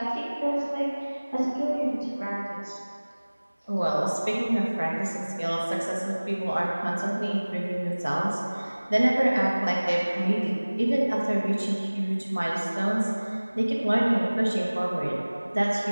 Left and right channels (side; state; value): both; inverted; correlation -1.00